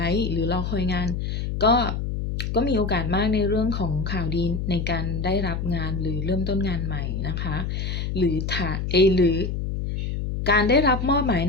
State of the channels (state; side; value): noise; left; hum, 3 dB below the sound